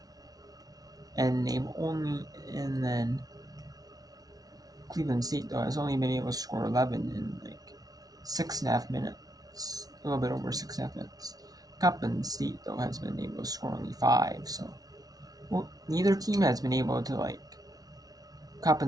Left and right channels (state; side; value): late; left; 0.18 ms